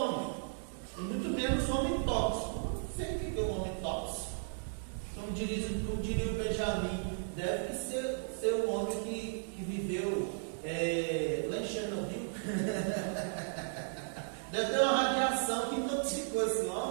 e muito menos homem tóxico. Não sei o que é um homem tóxico. Como diria o Benjamin, deve ser um homem que que viveu lá em Chernobyl. Deve ter uma radiação que intoxicou esse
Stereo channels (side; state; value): left; silent; digital silence